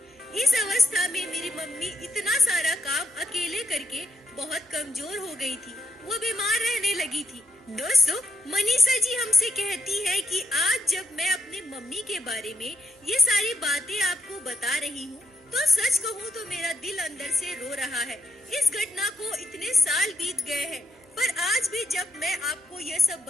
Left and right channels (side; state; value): both; normal; correlation 0.83